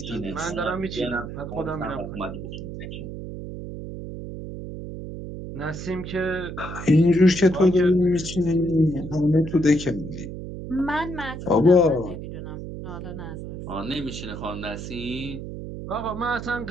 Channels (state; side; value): noise; right; hum, 9 dB below the sound